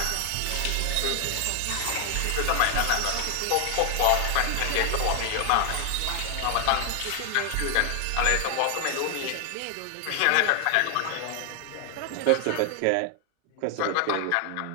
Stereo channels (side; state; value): both; different; correlation 0.00